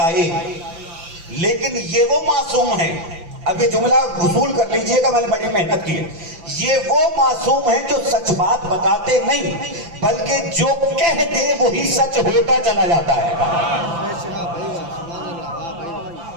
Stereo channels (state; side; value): late; left; 5.9 ms